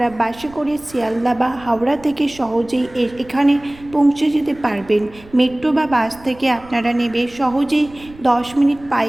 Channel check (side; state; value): right; noise; rumble, 22 dB below the sound